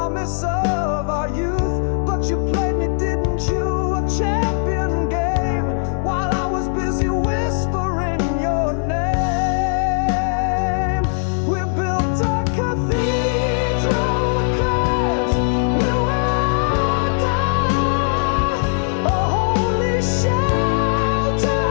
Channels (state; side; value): silent; right; digital silence